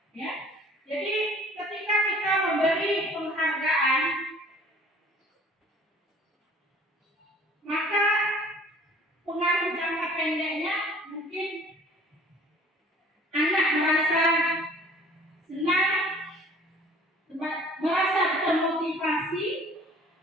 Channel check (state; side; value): normal; both; correlation 0.51